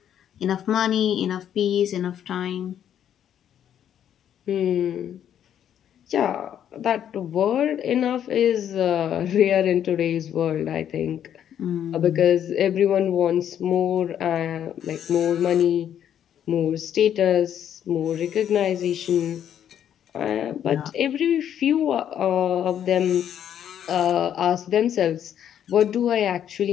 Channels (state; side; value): quieter; right; 9.8 dB